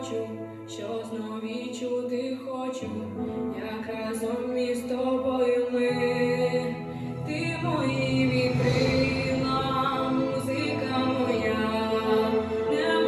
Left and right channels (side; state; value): both; identical; correlation 1.00